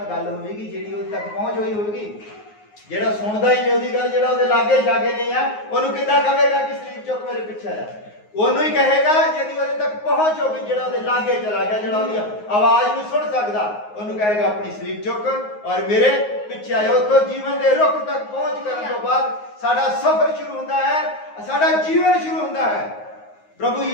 ਗੱਲ ਹੋਵੇਗੀ, ਜਿਹੜੀ ਉਹਦੇ ਤੱਕ ਪਹੁੰਚ ਹੋਈ ਹੋਵੇਗੀ। ਜਿਹੜਾ ਸੁਣਦਾ ਹੀ ਨਹੀਂ ਉਹਦੀ ਗੱਲ, ਜਿਹੜਾ ਉਹਦੇ ਲਾਗੇ ਜਾਗੇ ਨਹੀਂ ਆ, ਉਹਨੂੰ ਕਿੱਦਾਂ ਕਹੇਗਾ ਕਿ ਸਲੀਬ ਚੁੱਕ ਮੇਰੇ ਪਿੱਛੇ ਆ ਜਾ? ਉਹਨੂੰ ਹੀ ਕਹੇਗਾ ਜਿਹਦੀ ਉਹਦੇ ਤੱਕ ਪਹੁੰਚ ਹੋਵੇ, ਜਿਹੜਾ ਉਹਦੇ ਲਾਗੇ ਚਲਾ ਗਿਆ, ਜਿਹੜਾ ਉਹਦੀ ਆਵਾਜ਼ ਨੂੰ ਸੁਣ ਸਕਦਾ, ਉਹਨੂੰ ਕਹੇਗਾ ਆਪਣੀ ਸਲੀਬ ਚੁੱਕ ਔਰ ਮੇਰੇ ਪਿੱਛੇ ਆਇਆ। ਉੱਥੋਂ ਜੀਵਨ ਦੇ ਰੁੱਖ ਤੱਕ ਪਹੁੰਚ ਕਰਨ ਤੋਂ ਬਾਅਦ ਸਾਡਾ ਸਫ਼ਰ ਸ਼ੁਰੂ ਹੁੰਦਾ ਹੈ, ਸਾਡਾ ਜੀਵਨ ਸ਼ੁਰੂ ਹੁੰਦਾ ਹੈ। ਪ੍ਰਭੂ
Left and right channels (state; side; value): late; right; 9.5 ms